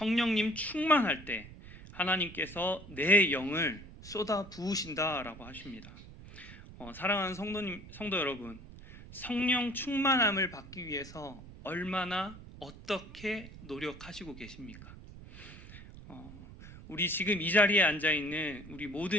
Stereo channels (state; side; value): noise; right; rumble, 16 dB below the sound